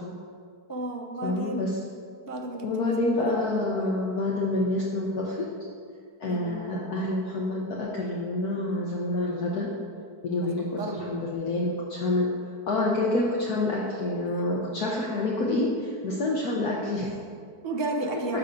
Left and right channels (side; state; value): right; late; 4.5 ms